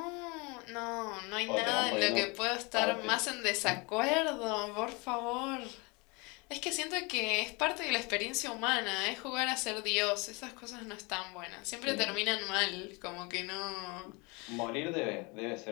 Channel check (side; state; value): right; quieter; 28.2 dB